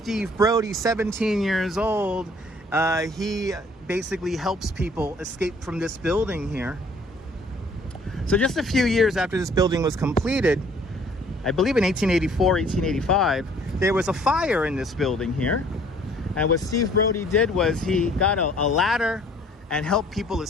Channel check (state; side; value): normal; both; correlation 0.57